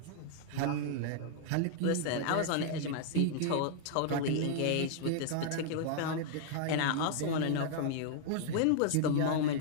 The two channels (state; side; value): different; both; correlation -0.01